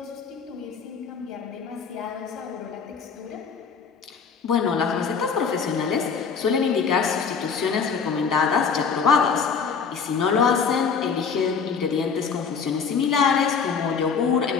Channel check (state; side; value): quieter; right; 5.9 dB